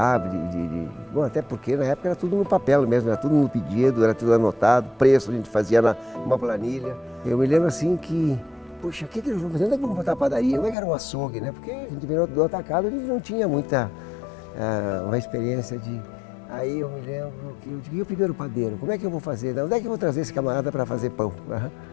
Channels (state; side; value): drops out; right; at 10.8 s